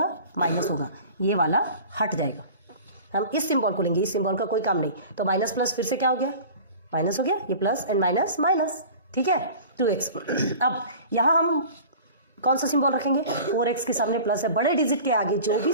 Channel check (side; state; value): both; inverted; correlation -0.40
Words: माइनस होगा, ये वाला हट जाएगा। हम इस सिंबल को लेंगे, इस सिंबल का कोई काम नहीं। तो माइनस प्लस फिर से क्या हो गया? माइनस हो गया, ये प्लस एंड माइनस माइनस। ठीक है, 2x। अब यहाँ हम कौन सा सिंबल रखेंगे? 4x के सामने प्लस है, बड़े डिजिट के आगे जो भी